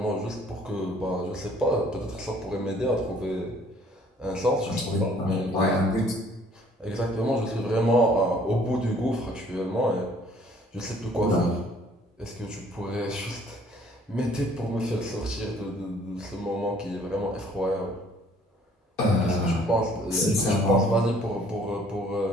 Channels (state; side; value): normal; both; correlation 0.58